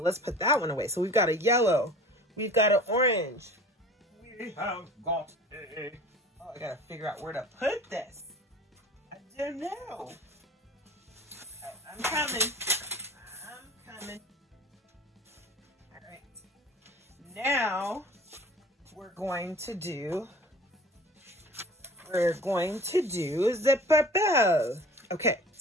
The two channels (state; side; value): normal; both; correlation 0.43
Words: let's put that one away. So we've got a yellow. We've got an orange. We have got a... Oh, I gotta figure out where to put this. I don't know. I'm coming. I'm coming. All right. Now we're going to do the purple. Okay,